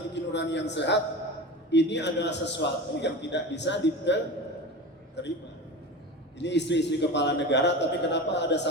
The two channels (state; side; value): normal; both; correlation 0.29